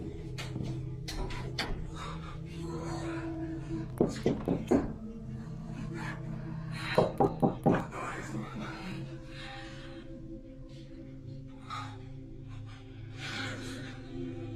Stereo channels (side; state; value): both; identical; correlation 1.00